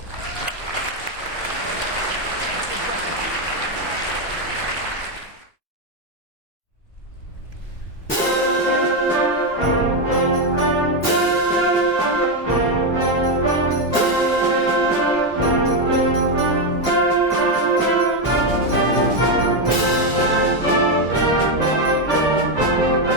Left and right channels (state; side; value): normal; both; correlation 0.06